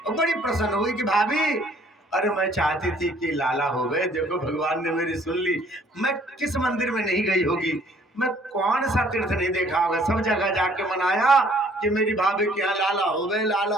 बड़ी प्रसन्न हुई कि भाभी अरे मैं चाहती थी कि लाला हो गए, देखो भगवान ने मेरी सुन ली। मैं किस मंदिर में नहीं गई होगी, मैं कौन सा तीर्थ नहीं देखा होगा, सब जगह जाके मनाया कि मेरी भाभी के यहाँ लाला हो गए, लाला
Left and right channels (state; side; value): normal; both; correlation 0.59